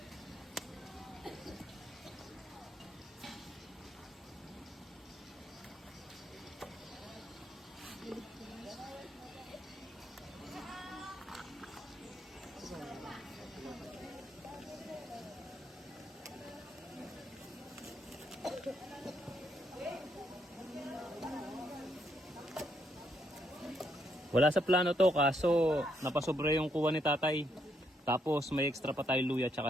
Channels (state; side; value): normal; both; correlation 0.75